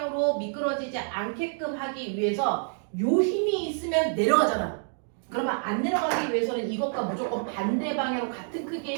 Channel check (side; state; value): left; silent; 60 dB below the other